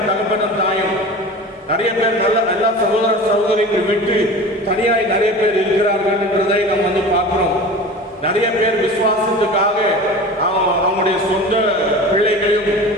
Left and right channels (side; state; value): both; normal; correlation 0.35